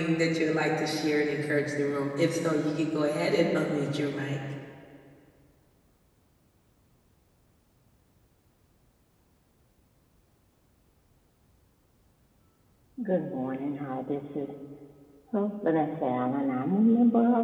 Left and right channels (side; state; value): both; identical; correlation 1.00